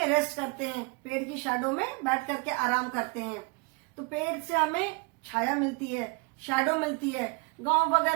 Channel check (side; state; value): left; quieter; 30.5 dB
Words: रेस्ट करते हैं, पेड़ की शैडो में बैठ करके आराम करते हैं। तो पेड़ से हमें छाया मिलती है, शैडो मिलती है। गांव